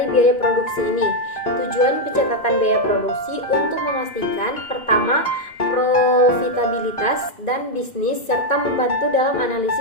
biaya produksi ini? Tujuan pencatatan biaya produksi untuk memastikan pertama, profitabilitas dan bisnis serta membantu dalam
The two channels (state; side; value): late; right; 2.4 ms